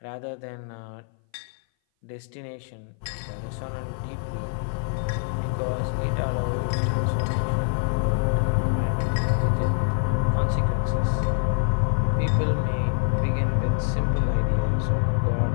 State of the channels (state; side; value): silent; right; 58 dB below the other